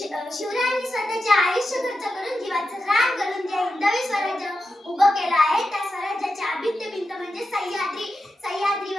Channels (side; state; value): both; normal; correlation 0.89